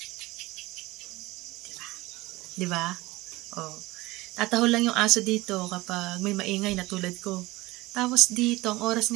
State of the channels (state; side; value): quieter; left; 20.3 dB